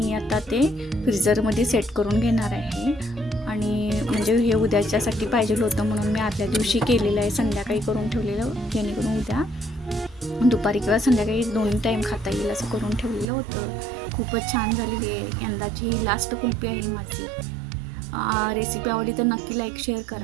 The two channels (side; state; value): left; drops out; at 13.2 s